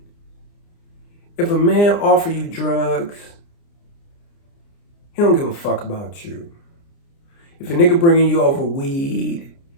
if a man offer you drugs, he don't give a fuck about you. If a nigga bringing you over weed,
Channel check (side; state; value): right; late; 29 ms